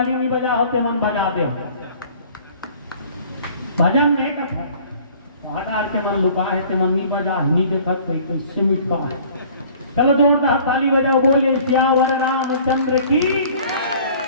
नहीं बजा होते मन बजा दे। भजन में एक है हटार के मन लुका है ते मन नहीं बजा नहीं देखत कैसे मिटवा है। चलो जोरदार ताली बजाओ बोले श्यावर रामचंद्र की।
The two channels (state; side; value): inverted; both; correlation -0.51